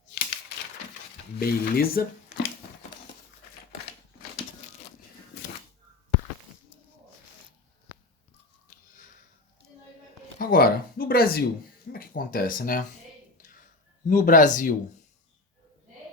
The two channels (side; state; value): right; quieter; 3.1 dB